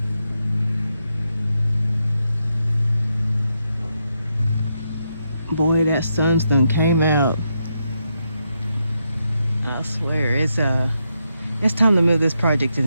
Boy, that sunstone came out. I swear, it's time to move this project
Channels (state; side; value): inverted; both; correlation -0.82